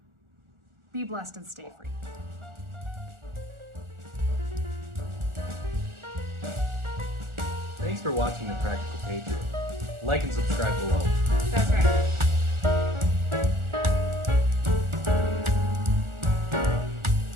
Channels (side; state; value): left; late; 1.4 ms